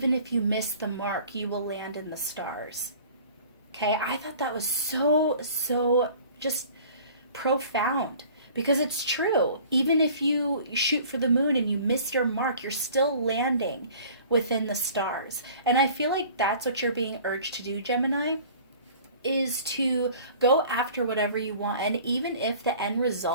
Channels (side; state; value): both; inverted; correlation -0.48